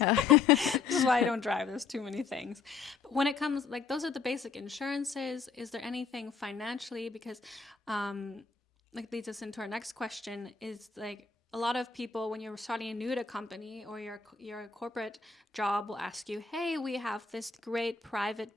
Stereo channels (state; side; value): quieter; right; 5.2 dB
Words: This is why I don't drive. There's too many things. But when it comes, like, those are the basic insurances. Is there anything financially? Because, like, leads us into our next question, is like, a lot of people, when you're starting a new at a company or your corporate job, will ask you, hey, we have this great